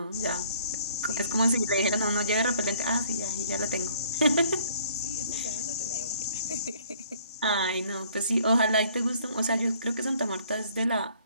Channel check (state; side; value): inverted; both; correlation -0.59